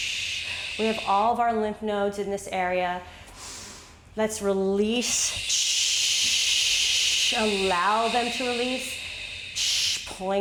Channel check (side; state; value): both; identical; correlation 1.00